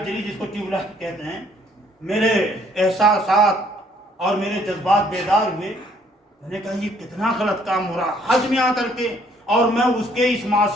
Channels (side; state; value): both; normal; correlation 0.64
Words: جلی، جس کو ٹیوب لائٹ کہتے ہیں. میرے احساسات اور میرے جذبات بیدار ہوئے. میں نے کہا یہ کتنا غلط کام ہو رہا، حج میں آ کر کے، اور میں اس کے اس